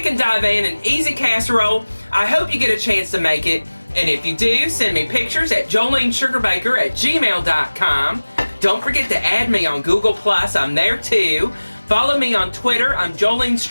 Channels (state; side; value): inverted; both; correlation -1.00